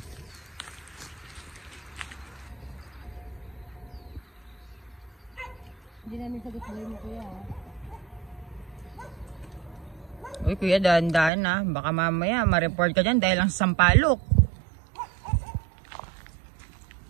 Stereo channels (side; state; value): left; drops out; at 11.3 s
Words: Hindi namin sagot sa mo kuya ah. Uy, kuya, dahan-dahan na. Baka mamaya ma-report ka dyan dahil lang sa sampalok.